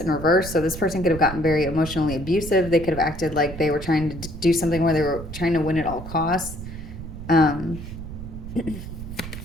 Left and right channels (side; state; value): right; noise; rumble, 10 dB below the sound